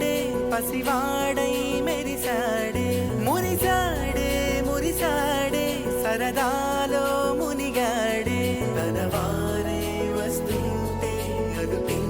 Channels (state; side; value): identical; both; correlation 1.00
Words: పసివాడై మెరిసాడే, మురిసాడే మురిసాడే సరదాలో మునిగాడే. తనవారే వస్తుంటే